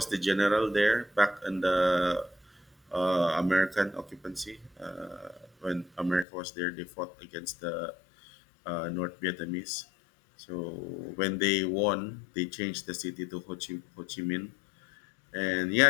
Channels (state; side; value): drops out; right; at 6.2 s